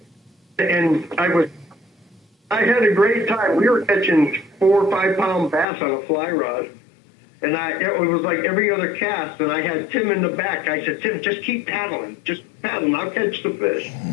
I had a great time. We were catching 4 or 5 pound bass on a fly rod. And it was like every other cast, and I had Tim in the back. I said, Tim, just keep paddling. Just paddling. I'll catch the fish.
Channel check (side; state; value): right; drops out; at 5.7 s